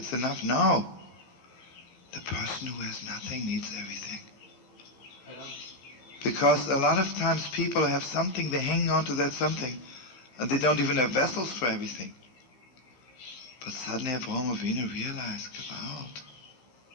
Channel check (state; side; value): late; right; 15 ms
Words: enough. No. The person who has nothing needs everything. Because a lot of times people have something, they hang on to that something, and they don't even have vessels for everything. But suddenly Avraham Avinu realized, Gewalt,